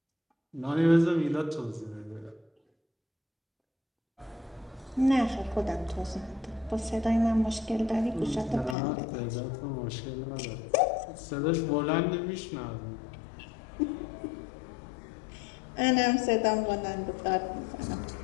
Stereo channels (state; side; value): drops out; right; at 8.8 s